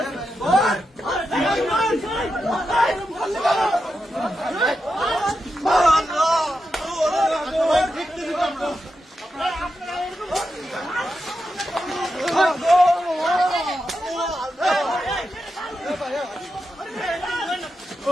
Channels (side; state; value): both; normal; correlation 0.88